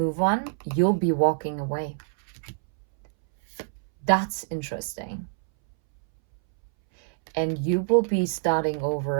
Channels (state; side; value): silent; left; 61 dB below the other